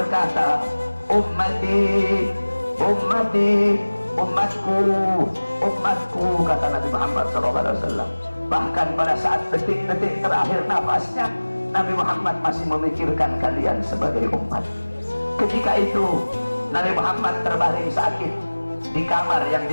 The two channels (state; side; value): inverted; both; correlation -1.00